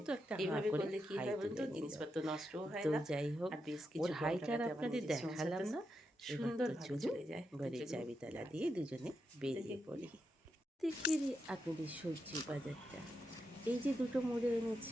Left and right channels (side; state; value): both; normal; correlation 0.85